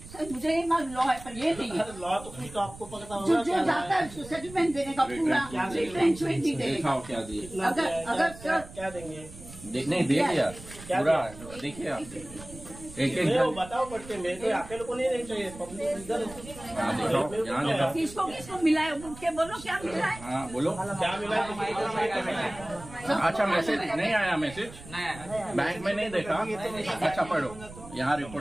सर मुझे ये मालूम लॉ है, पर ये नहीं है. लॉ तो कुछ तो आपको पता जो होगा. जाता है उसको सेटलमेंट देने का पूरा रिट्रेंचमेंट भी देगा. अगर सर क्या देंगे? नहीं दे दिया पूरा. देखिए आप एक बताओ पड़ते, मेरे को अकेले को नहीं चाहिए. किसको मिला है उठ के बोलो क्या मिला है. हाँ बोलो क्या मिला है? अच्छा मैसेज नहीं आया. मैसेज बैंक में नहीं देखा. अच्छा पढ़ो, यहाँ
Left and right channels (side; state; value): right; noise; rumble, 16 dB below the sound